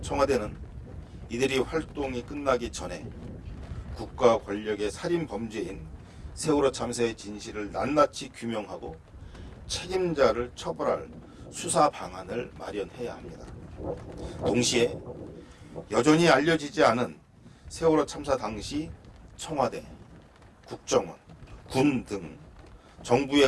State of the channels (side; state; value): both; identical; correlation 1.00